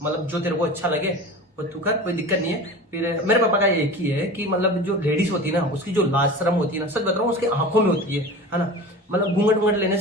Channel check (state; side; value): normal; both; correlation 0.34